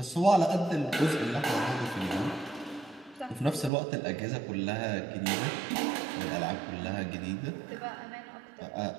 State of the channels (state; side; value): drops out; left; at 3.7 s